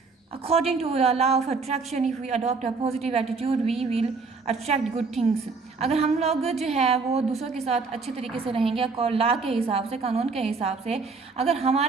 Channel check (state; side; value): quieter; left; 4.4 dB